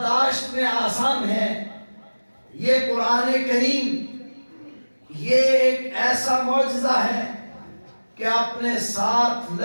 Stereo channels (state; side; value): inverted; both; correlation -1.00